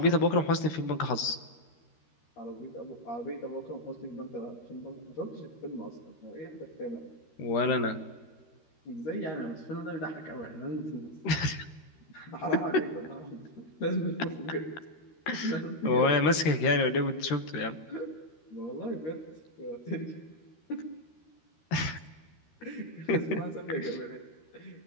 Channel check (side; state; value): right; late; 13 ms